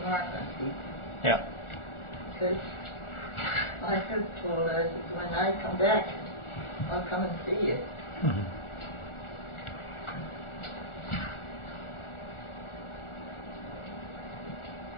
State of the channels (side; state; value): right; late; 1.4 ms